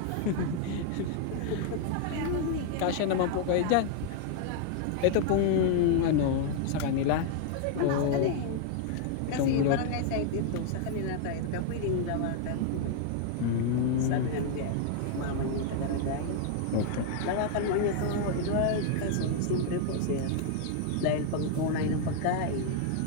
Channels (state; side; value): different; both; correlation 0.00